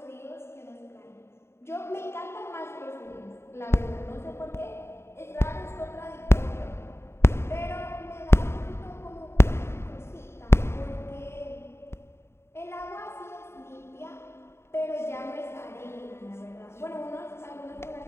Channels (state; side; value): late; right; 0.12 ms